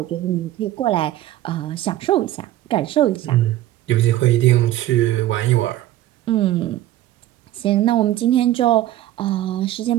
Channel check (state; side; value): quieter; left; 14.1 dB